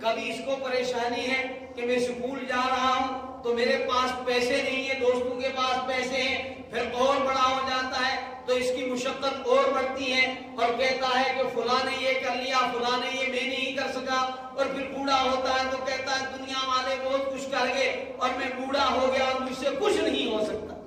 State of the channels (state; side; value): identical; both; correlation 1.00